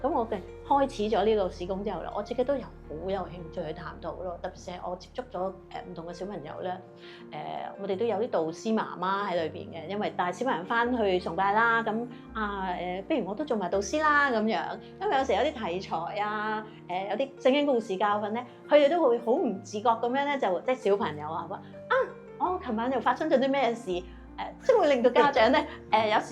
咁我嘅開始咗呢個事工之後咧，我自己都有好有興趣去探討咯。特別係我接觸咗唔同嘅小朋友咧，我哋都有啲導師媽媽喺裏邊嘅，因為帶小朋友翻去崇拜啦，咁不如我都做埋導師啦咁樣。因為有時有啲題材啊，有啲聖經故事教訓咧，佢哋都會好唔自覺咁樣咧，就即係小朋友話我琴晚又發生咗啲咩事？即係會令到家長咧，有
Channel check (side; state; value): both; identical; correlation 1.00